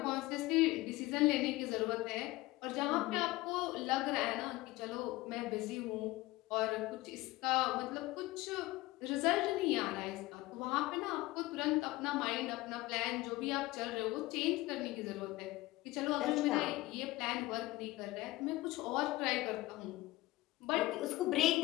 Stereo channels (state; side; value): quieter; right; 19.1 dB